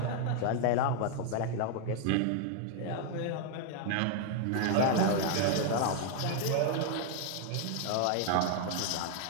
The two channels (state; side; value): different; both; correlation 0.00